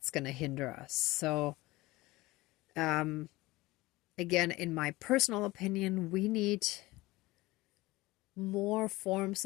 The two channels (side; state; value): right; quieter; 20.1 dB